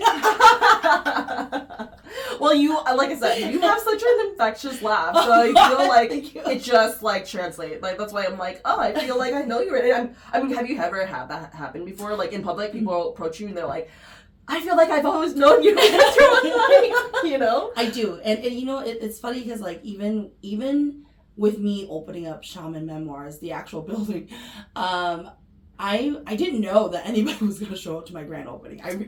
Well, like I said, you have such an infectious laugh, so I feel like it just like translates. Like, that's why I'm like, oh, I feel like I know you already. I mean, have you ever had that happen before? Like, in public, people approach you and they're like, I feel like I've always known you. I do, and it's funny because, like, even with me opening up Shaman Memoirs, the actual building, I didn't know that anybody was going to show up to my grand opening.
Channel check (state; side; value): identical; both; correlation 1.00